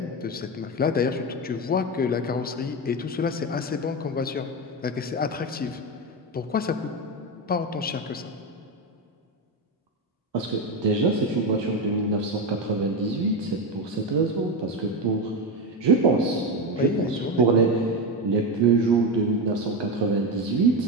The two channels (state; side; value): normal; both; correlation 0.14